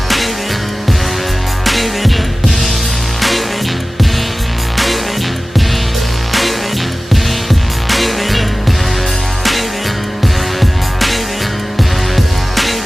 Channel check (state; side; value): normal; both; correlation 0.97